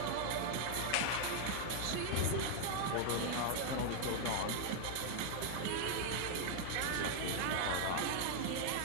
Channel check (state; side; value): different; both; correlation 0.00